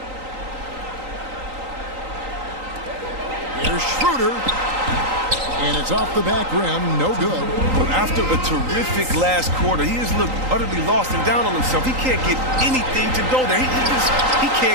Here's Schroeder. And it's off the back rim. No good. Well, after a terrific last quarter, he has looked utterly lost and down on himself. He can't get anything to go there. He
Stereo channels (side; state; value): left; late; 3.9 ms